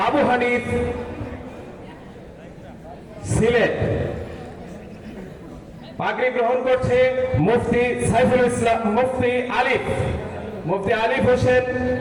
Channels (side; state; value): both; identical; correlation 1.00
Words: আবু হানিফ সিলেট। পাগড়ি গ্রহণ করছে মুফতি সাইফুল ইসলাম মুফতি আলিফ হোসেন